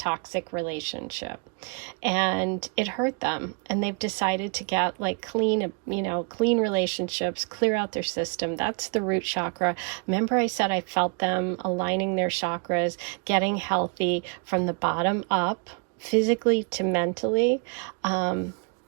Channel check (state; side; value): quieter; left; 35.6 dB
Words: relationship, and it hurt them, and they've decided to get like clean relationships, clear out their system. That's the root chakra. Remember I said I felt them aligning their chakras, getting healthy from the bottom up, physically to mentally.